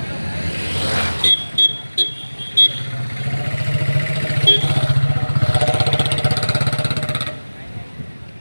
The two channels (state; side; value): inverted; both; correlation -1.00